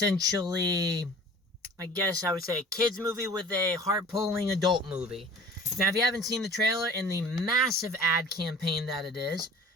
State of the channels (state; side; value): normal; both; correlation 0.44